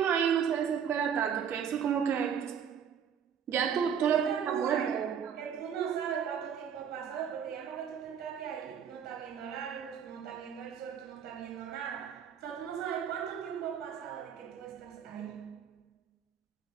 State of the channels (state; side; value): quieter; left; 7.9 dB